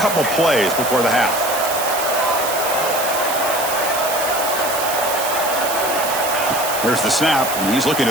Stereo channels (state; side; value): noise; right; hiss, 5 dB below the sound